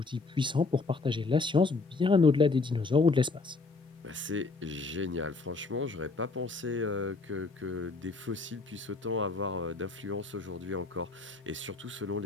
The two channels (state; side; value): quieter; right; 3.7 dB